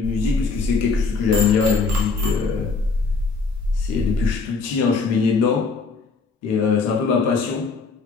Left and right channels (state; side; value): quieter; right; 4.5 dB